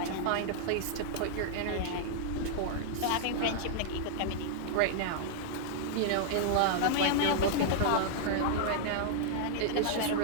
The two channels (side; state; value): both; different; correlation -0.01